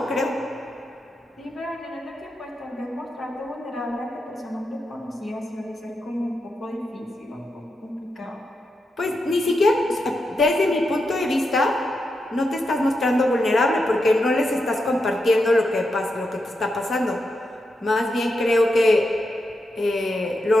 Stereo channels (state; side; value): normal; both; correlation 0.86